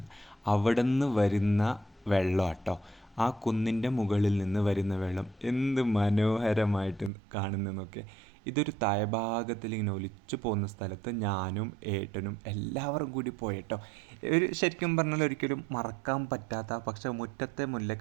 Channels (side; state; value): left; drops out; at 7.1 s